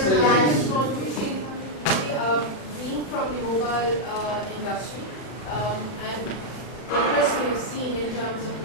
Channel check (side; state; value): right; late; 39 ms